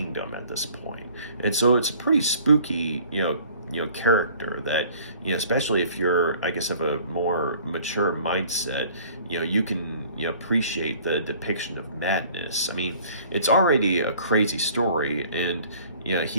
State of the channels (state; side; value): inverted; both; correlation -0.52